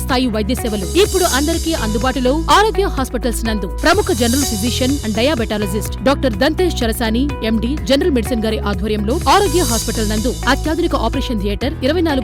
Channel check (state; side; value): identical; both; correlation 1.00